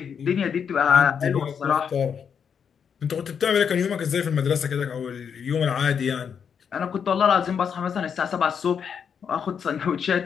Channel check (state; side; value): quieter; right; 7.2 dB